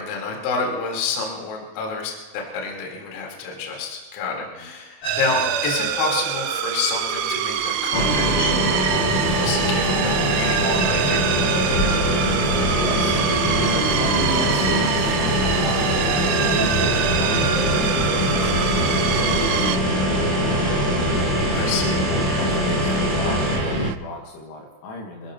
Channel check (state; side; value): late; right; 27 ms